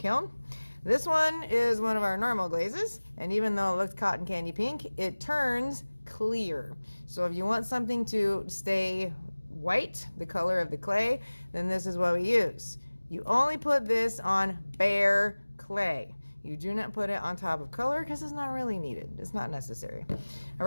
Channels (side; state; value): both; inverted; correlation -1.00